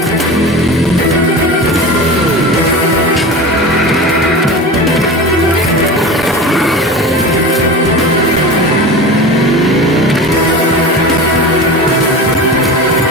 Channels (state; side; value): normal; both; correlation 0.30